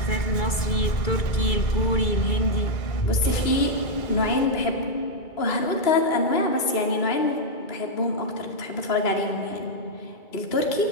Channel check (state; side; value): late; right; 2.3 ms